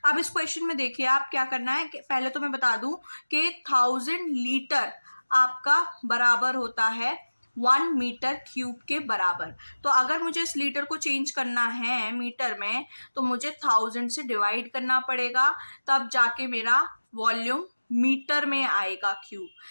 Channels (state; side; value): inverted; both; correlation -1.00